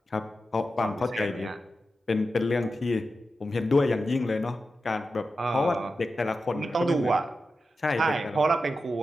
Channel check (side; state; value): both; normal; correlation 0.91